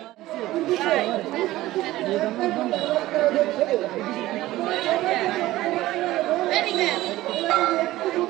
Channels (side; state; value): left; quieter; 16.5 dB